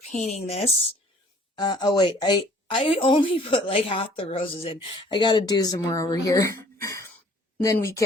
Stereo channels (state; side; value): normal; both; correlation 0.55